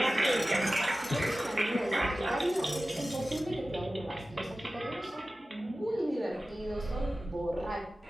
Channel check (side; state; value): both; normal; correlation 0.96